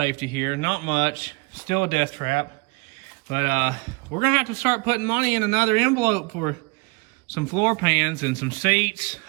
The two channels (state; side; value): quieter; left; 29.0 dB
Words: here, not much, still a death trap. But we're gonna have to start putting money in another envelope for some floor pans and some seats.